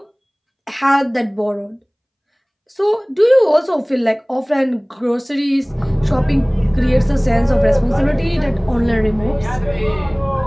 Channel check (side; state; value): both; identical; correlation 1.00